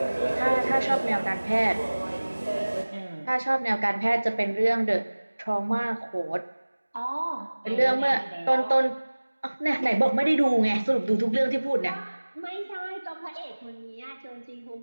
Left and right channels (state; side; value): inverted; both; correlation -1.00